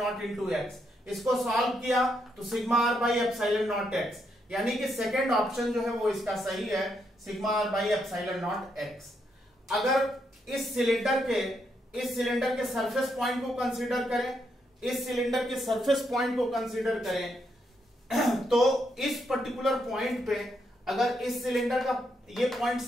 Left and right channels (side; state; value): both; normal; correlation 0.78